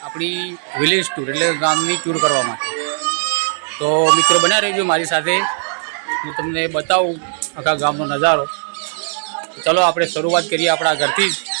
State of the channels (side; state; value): left; silent; digital silence